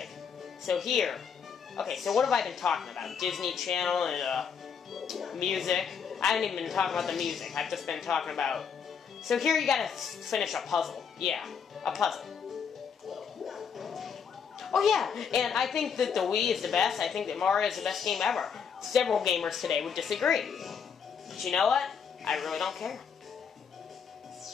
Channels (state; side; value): quieter; right; 6.7 dB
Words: So here. Okay, so what have I been talking about? Disney Channel and music. I haven't even been talking about the music. I've just been talking about... So here you gotta finish a puzzle. Yeah, a puzzle. Oh yeah, and I think that the Wii is the best. I think that Mario is the best game ever. Several gamers today would disagree. But you know what? I really don't care.